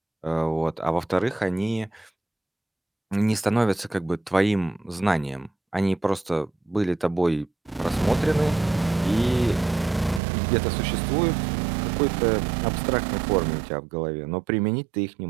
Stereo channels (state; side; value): drops out; left; at 10.2 s